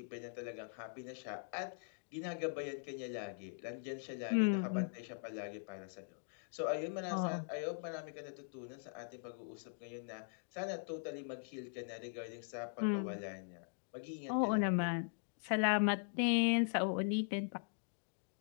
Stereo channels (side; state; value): right; silent; digital silence